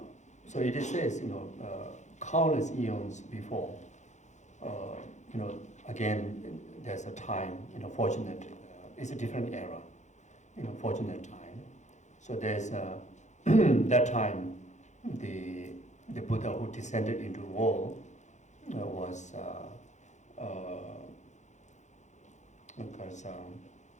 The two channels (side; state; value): right; late; 0.34 ms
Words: so it says countless eons before. Again, there's a time, fortunate, it's a different era, fortunate time. So there's that time, the Buddha who descended into the world was